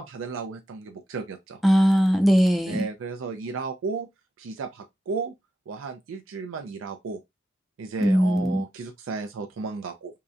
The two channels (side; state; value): both; normal; correlation 0.86